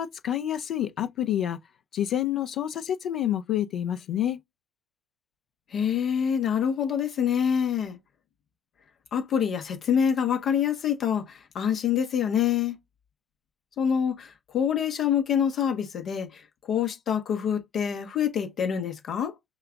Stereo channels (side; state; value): right; quieter; 8.3 dB